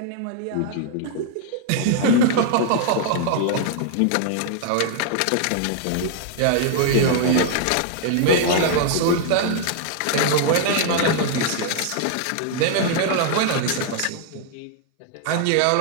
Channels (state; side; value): different; both; correlation -0.01